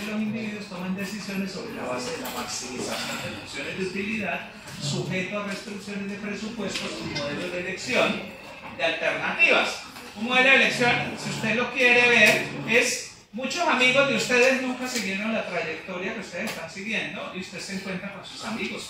los individuos toman decisiones sobre la base de la maximización de funciones de utilidad, sujeto a restricciones de presupuestos y modelos de elección de alternativas. Un modelo de elección, si usted lo quiere ver, es muchos amigos de ustedes nunca siguieron la trayectoria que ustedes están siguiendo y usted se encuentra con sus amigos,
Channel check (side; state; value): both; identical; correlation 1.00